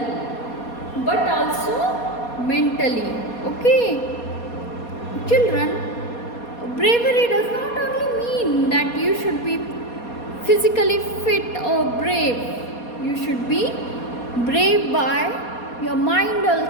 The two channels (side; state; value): right; late; 4.2 ms